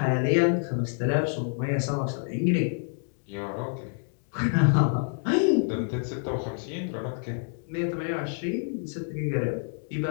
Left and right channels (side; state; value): right; silent; digital silence